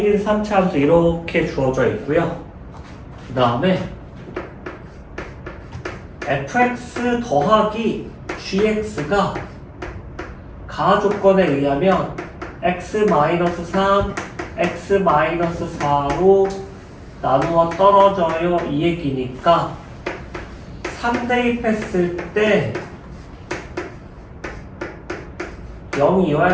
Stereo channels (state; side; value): identical; both; correlation 1.00